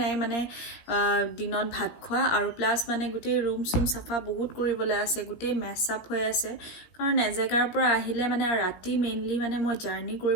নাই, মানে দিনত ভাত খোৱা আৰু প্লাছ মানে গোটেই ৰুম চুম চাফা বহুত কৰিবলৈ আছে, গোটেই মেচ আপ হৈ আছে, কাৰণ এজেগাৰ পৰা আহিলে মানে ৰাতি মেইনলি মানে মই জাৰ্ণি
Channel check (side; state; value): right; late; 17 ms